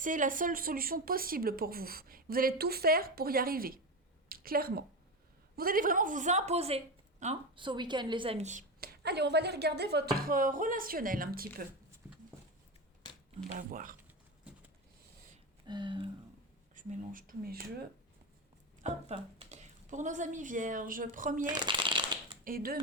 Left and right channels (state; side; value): normal; both; correlation 0.17